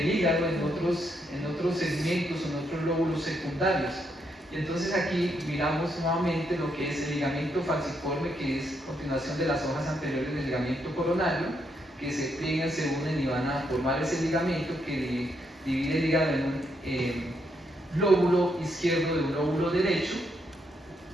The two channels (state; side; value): normal; both; correlation 0.77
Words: hígado en otros segmentos, en otros lóbulos secundarios. Y entonces aquí miramos nuevamente lo que es el ligamento falciforme, que es continuación de las hojas anteriores del ligamento coronario, que se pliegan, se unen y van a formar ese ligamento que divide el hígado en un lóbulo izquierdo de un lóbulo derecho.